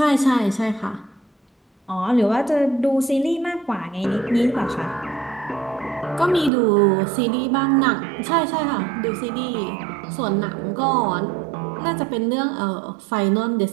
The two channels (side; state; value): left; drops out; at 6.5 s